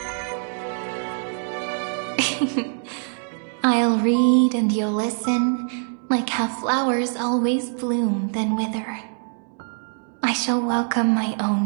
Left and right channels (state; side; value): silent; left; 63 dB below the other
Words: I'll read and you'll listen, like how flowers always bloom then wither. I shall welcome my